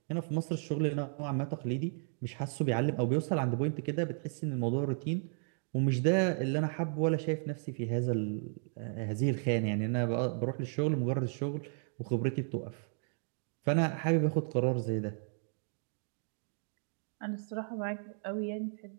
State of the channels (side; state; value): left; silent; 55 dB below the other